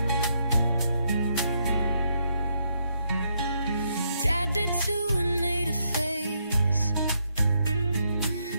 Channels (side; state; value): both; inverted; correlation -0.77